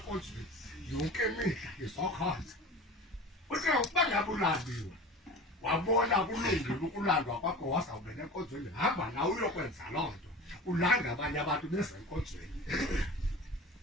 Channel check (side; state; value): both; normal; correlation 0.36